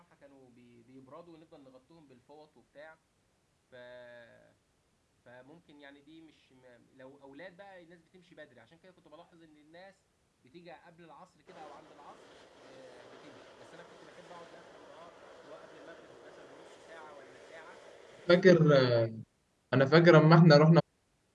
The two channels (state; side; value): identical; both; correlation 1.00